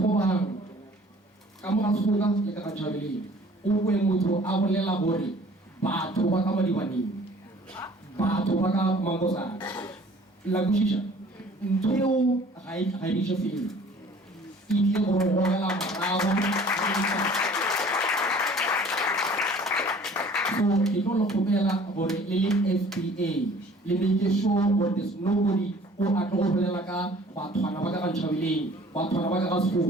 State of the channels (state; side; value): normal; both; correlation 0.51